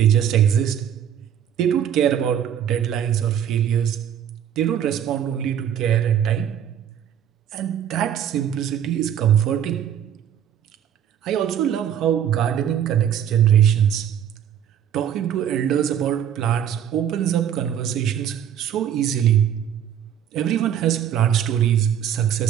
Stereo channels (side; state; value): left; quieter; 9.6 dB